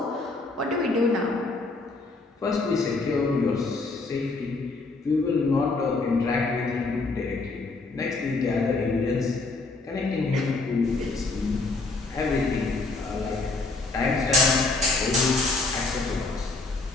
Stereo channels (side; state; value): right; quieter; 3.6 dB